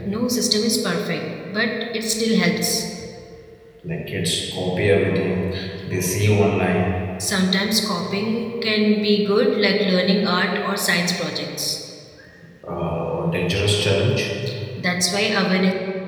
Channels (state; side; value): identical; both; correlation 1.00